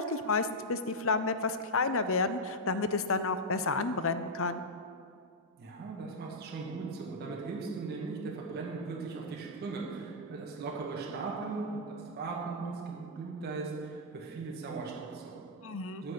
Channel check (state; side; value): normal; both; correlation -0.07